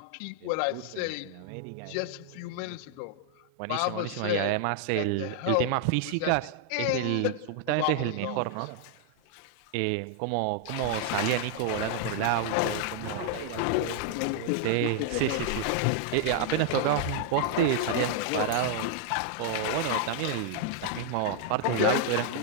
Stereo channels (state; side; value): different; both; correlation 0.00